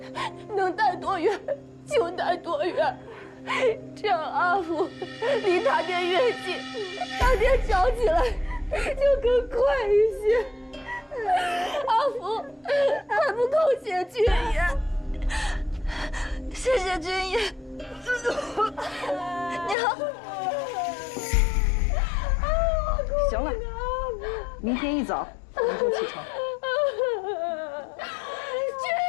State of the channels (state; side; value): drops out; right; at 19.8 s